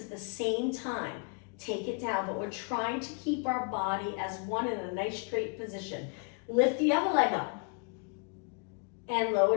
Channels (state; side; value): quieter; right; 37.2 dB